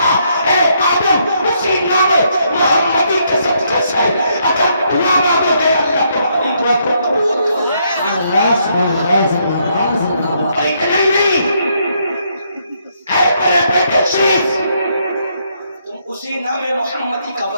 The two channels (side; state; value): both; inverted; correlation -0.74